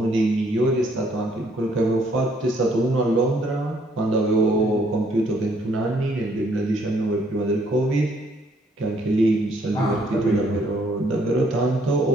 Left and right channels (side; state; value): both; normal; correlation 0.67